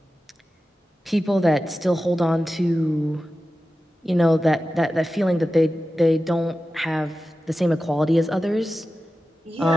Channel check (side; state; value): both; normal; correlation 0.94